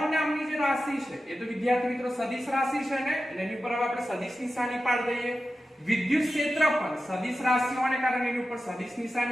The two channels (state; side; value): normal; both; correlation 0.93